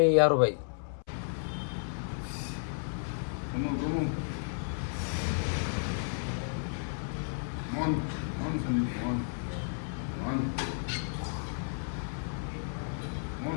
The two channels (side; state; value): right; silent; 56 dB below the other